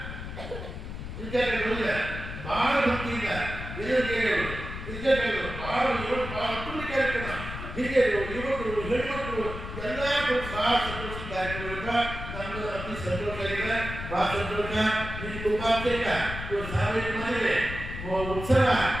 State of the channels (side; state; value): left; noise; rumble, 8 dB below the sound